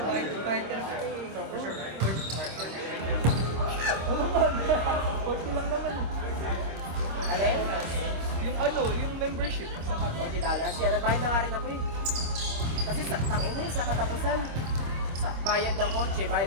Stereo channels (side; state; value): left; late; 26 ms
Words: Alin? Yung ano, yung membership sa $40. Yan, nagbayad na nga rin ako eh. Kasi tangina sa katapusan, sa bayad ng kotse, bayad